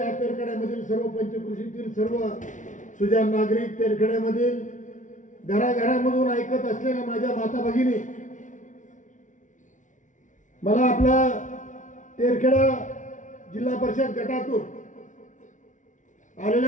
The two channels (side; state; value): right; late; 0.37 ms